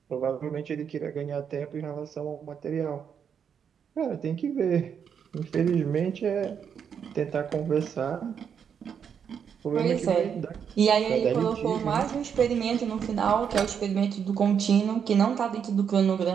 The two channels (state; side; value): quieter; left; 7.5 dB